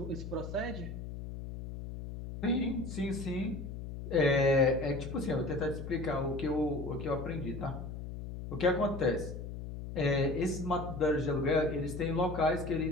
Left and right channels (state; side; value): noise; left; hum, 8 dB below the sound